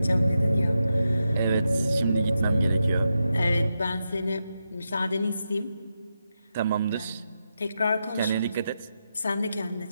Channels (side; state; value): both; inverted; correlation -0.87